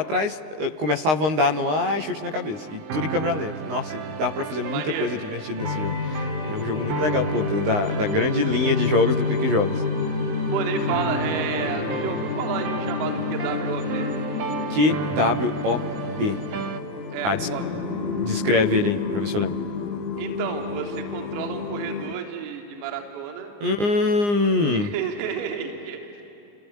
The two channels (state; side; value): late; left; 20 ms